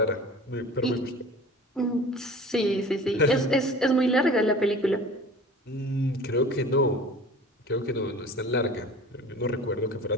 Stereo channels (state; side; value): normal; both; correlation 0.41